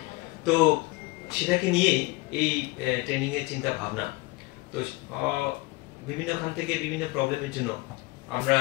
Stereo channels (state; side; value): quieter; right; 22.6 dB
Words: তো সেটাকে নিয়েই এই ট্রেনিং এর চিন্তা ভাবনা। তো বিভিন্ন খান থেকে বিভিন্ন প্রবলেমের জন্য আমরা